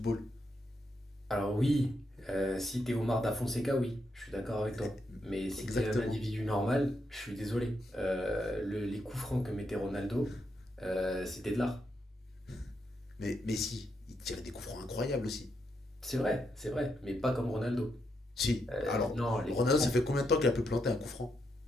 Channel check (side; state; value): both; normal; correlation 0.81